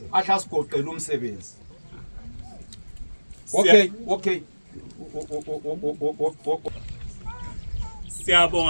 ahla sigoqela umsebenzi. Okay.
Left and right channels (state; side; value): inverted; both; correlation -1.00